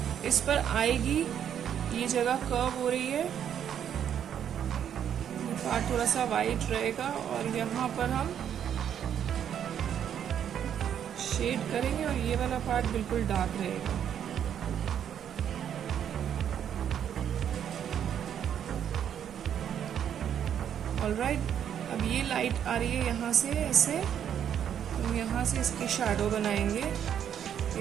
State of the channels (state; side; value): quieter; left; 9.2 dB